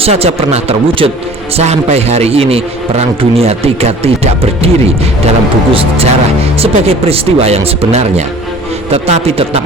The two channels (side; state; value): both; normal; correlation 0.46